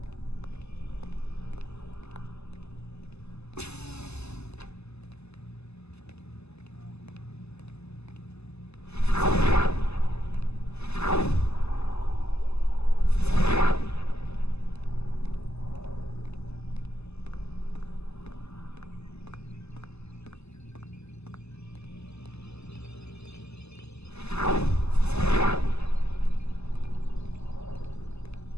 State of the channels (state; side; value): late; right; 0.79 ms